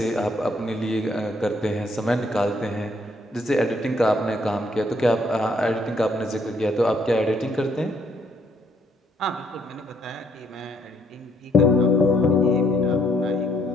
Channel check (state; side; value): normal; both; correlation 0.68